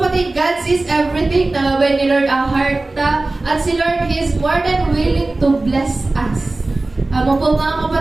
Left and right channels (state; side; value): quieter; left; 3.1 dB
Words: God sees everything, nalabay ni Lord ang heart ta, at si Lord, He is more than willing to bless us. Amo po mga